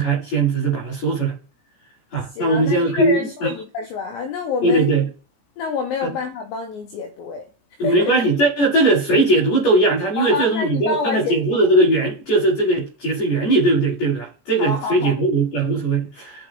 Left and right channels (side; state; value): right; late; 17 ms